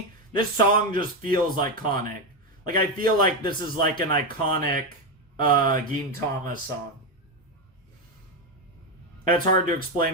This song just feels iconic. Like, I feel like this is like an iconic, Gintama song. And it's hard to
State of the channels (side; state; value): both; normal; correlation 0.09